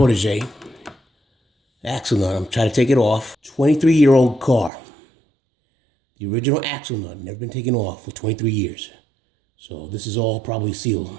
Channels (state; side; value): drops out; left; at 4.7 s